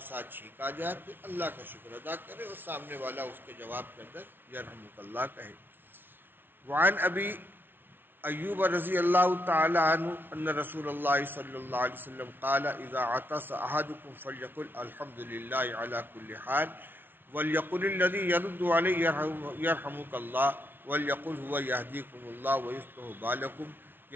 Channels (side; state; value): left; late; 0.10 ms